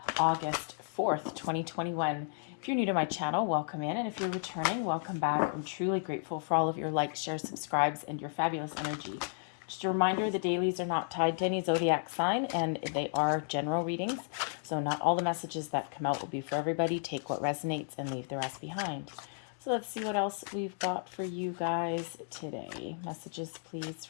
August 4th, 2021. If you're new to my channel, welcome in. And if you're returning, welcome back. I'm truly grateful for all of your likes, shares, subscribes, and your fabulous energy. Just a reminder, the dailies are not tied to any zodiac sign, and they are general readings. So not all the messages that come out will be for everybody. Take what resonates and leave the rest behind. So let's see what else we've got for you guys today. Messages, please,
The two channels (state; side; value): silent; right; digital silence